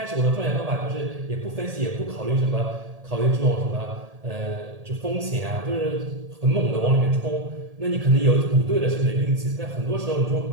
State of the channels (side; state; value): left; late; 1.8 ms